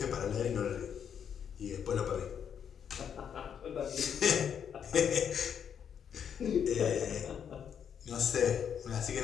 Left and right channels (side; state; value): right; quieter; 8.1 dB